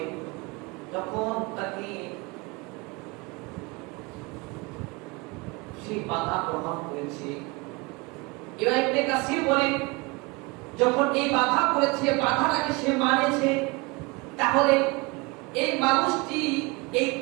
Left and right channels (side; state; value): left; quieter; 26.3 dB